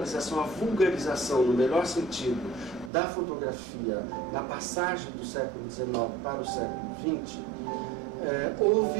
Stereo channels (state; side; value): drops out; left; at 2.9 s